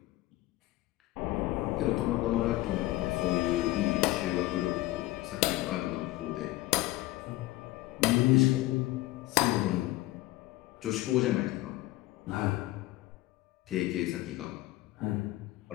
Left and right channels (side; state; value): right; quieter; 17.7 dB